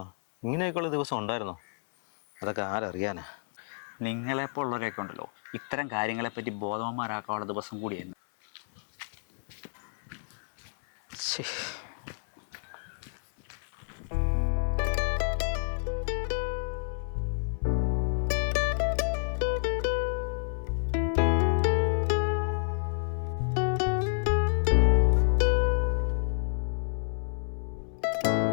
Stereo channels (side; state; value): right; silent; 58 dB below the other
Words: ഇങ്ങനെയൊക്കെയുള്ള ദിവസം ഉണ്ടായിരുന്നോ? അതൊക്കെ ആരറിയാനാ. നിങ്ങളെപ്പോലുള്ളവരൊക്കെ ഉണ്ടല്ലോ, ഇത്തരം കാര്യങ്ങളെപ്പറ്റി ബോധവാന്മാരാക്കാനുള്ള ദിവസം കൂടിയായിരുന്നു.